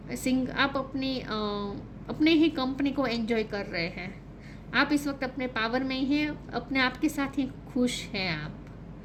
अपने ही कंपनी को एंजॉय कर रहे हैं, आप इस वक्त अपने पावर में ही हैं, अपने आप के साथ ही खुश हैं आप,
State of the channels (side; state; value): both; identical; correlation 1.00